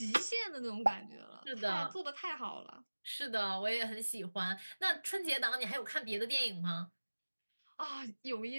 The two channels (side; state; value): both; inverted; correlation -1.00